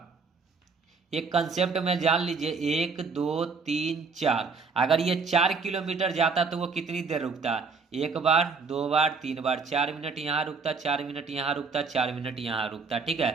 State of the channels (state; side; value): quieter; left; 4.8 dB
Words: एक कंसेप्ट में जान लीजिए। 1 2 3 4, अगर ये 4 किलोमीटर जाता तो वो कितनी देर रुकता 1 बार 2 बार 3 बार, 4 मिनट यहाँ रुकता, 4 मिनट यहाँ रुकता, 4 मिनट यहाँ रुकता। ठीक